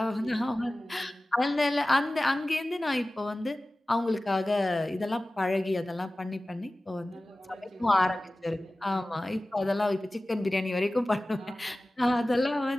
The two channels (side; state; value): both; normal; correlation 0.97